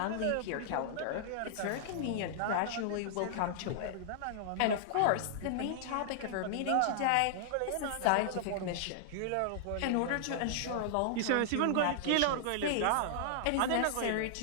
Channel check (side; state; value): both; different; correlation -0.01